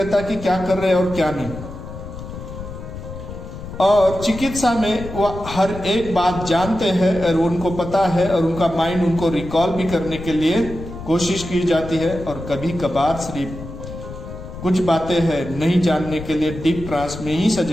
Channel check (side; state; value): left; noise; rumble, 11 dB below the sound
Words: कि क्या कर रहे हैं और क्या नहीं। और चिकित्सा में वो हर एक बात जानते हैं और उनको पता है और उनका माइंड उनको रिकॉल भी करने के लिए कोशिश की जाती है, और कभी कभार सिर्फ कुछ बातें हैं नहीं जानने के लिए डीप ट्रांस में ही